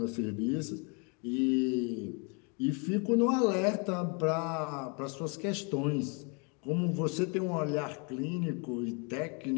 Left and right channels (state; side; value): quieter; right; 34.4 dB